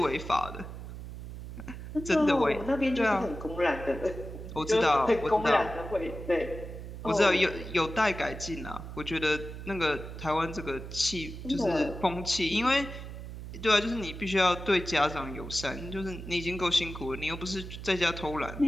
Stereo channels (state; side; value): noise; right; hum, 10 dB below the sound